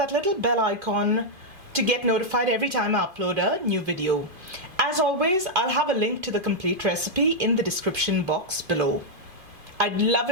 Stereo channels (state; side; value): late; left; 2.5 ms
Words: little bell icon to get notified every time I upload a new video. As always, I'll have a link to the complete recipe in the description box below. I'd love